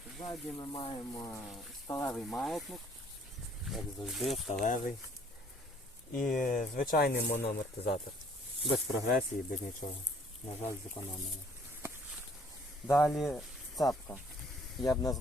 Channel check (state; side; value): normal; both; correlation 0.59